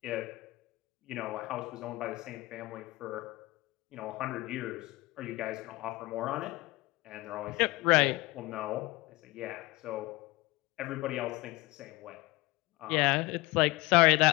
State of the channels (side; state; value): right; quieter; 21.6 dB